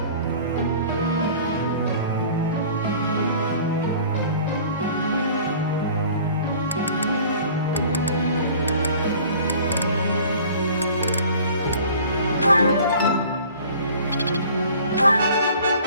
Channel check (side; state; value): both; inverted; correlation -0.48